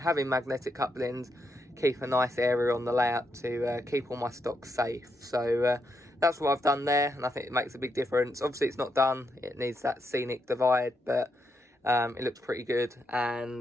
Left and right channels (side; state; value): both; normal; correlation 0.81